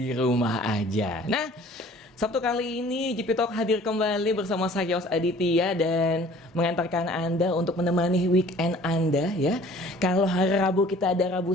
rumah aja. Nah, Sabtu kali ini GP Talk hadir kembali bersama saya Yos Aditya dan mengantarkan Anda untuk menemani weekend Anda ya. Kalau hari Rabu kita ada Rabu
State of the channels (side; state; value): both; normal; correlation 0.51